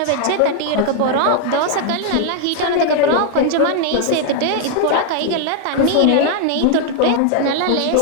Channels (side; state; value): both; different; correlation 0.00